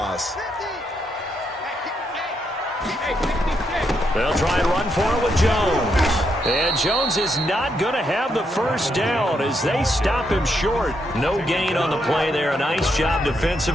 They'll try and run for it with Jones. And Jones is not going to have the first down as they stop him short. No gain on the play there. A nice job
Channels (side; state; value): both; normal; correlation 0.79